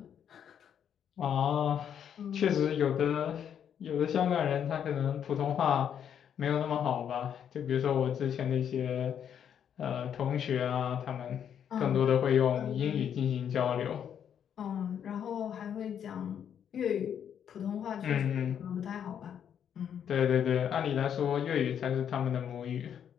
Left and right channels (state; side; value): quieter; right; 8.7 dB